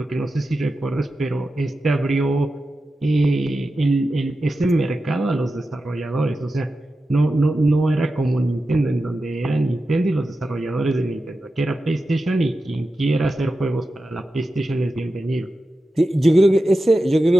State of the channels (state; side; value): normal; both; correlation 0.92